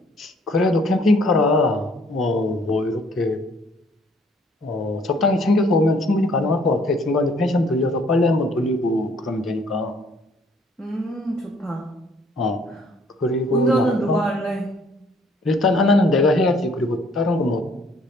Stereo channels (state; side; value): normal; both; correlation 0.61